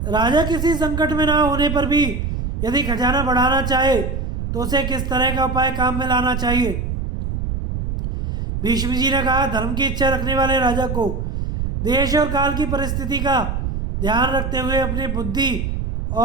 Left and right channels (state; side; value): noise; right; rumble, 3 dB below the sound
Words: राजा किसी संकट में ना होने पर भी यदि खजाना बढ़ाना चाहे तो उसे किस तरह का उपाय काम में लाना चाहिए? भीष्म जी ने कहा, धर्म की इच्छा रखने वाले राजा को देश और काल की परिस्थिति का ध्यान रखते हुए अपनी बुद्धि